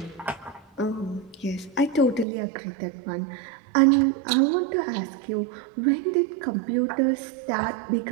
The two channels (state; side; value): drops out; left; at 2.2 s